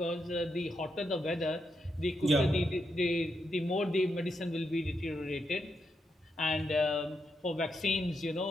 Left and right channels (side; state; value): both; normal; correlation 0.83